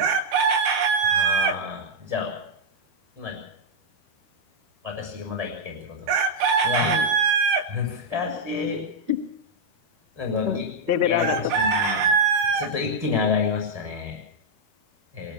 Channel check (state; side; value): late; left; 12 ms